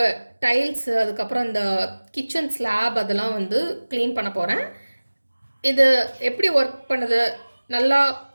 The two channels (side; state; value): both; inverted; correlation -1.00